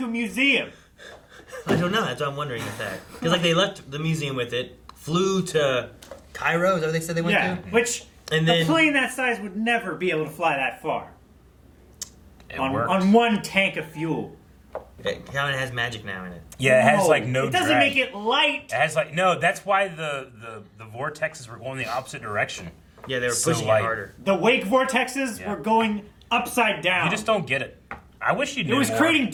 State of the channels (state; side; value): identical; both; correlation 1.00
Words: a museum? I don't know. That's what I'm wondering if that. Because, like, they left the museum with it, flew to Cairo, is that what they said they went Yeah, to? which And a then- plane that size would never be able to fly that far. It On worked. one tank of fuel. It kind of has magic now in it. Yeah, it has like no It doesn't drag. make it light. It has like no. That's why the vortexes were going the opposite direction. Yeah, they were So pushing light. it harder. The wake vortexes Yeah. were going upside down. You just don't get it. I wish you knew It was more. creating